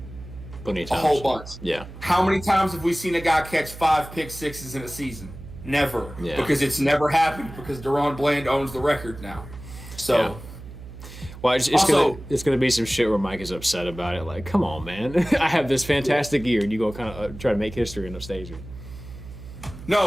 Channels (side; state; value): right; noise; hum, 14 dB below the sound